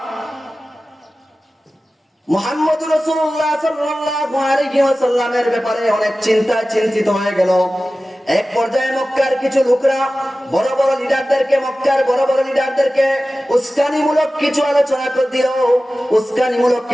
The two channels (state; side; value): normal; both; correlation 0.96